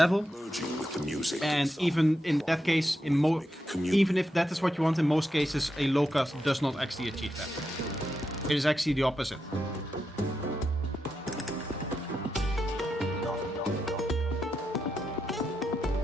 And even in that case, even if that is what you want, in most cases, a low cut does not actually achieve that. It is actually the opposite.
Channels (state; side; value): normal; both; correlation 0.86